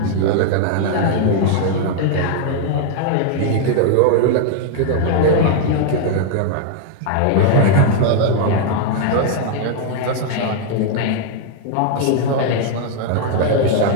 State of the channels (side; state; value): both; different; correlation 0.00